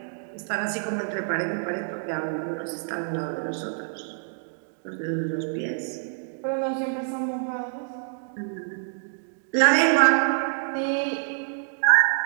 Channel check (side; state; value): left; silent; digital silence